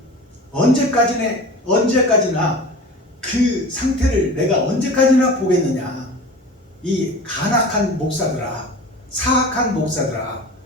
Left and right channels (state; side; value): normal; both; correlation 0.36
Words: 언제까지나 그 상태를 내가 언제까지나 보겠느냐. 이 간악한 목사들아, 사악한 목사들아,